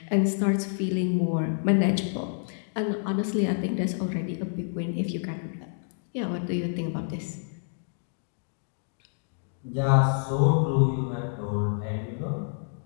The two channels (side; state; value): right; silent; digital silence